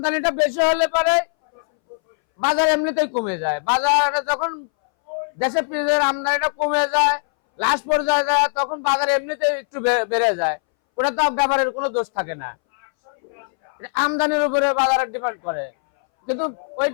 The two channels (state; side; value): silent; right; 63 dB below the other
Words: বেশি হলে পরে বাজার এমনিতেই কমে যায়। বাজারে যখন দেশে পেঁয়াজের আমদানিটা কমে যায়, লাস্ট পর্যায়ে যায়, তখন বাজার এমনিতেই একটু বেড়ে যায়। ওটা তো ব্যাপারের কোনো দোষ থাকে না, আমদানির উপরে বাজারের ডিপেন্ড করে। কিন্তু ওই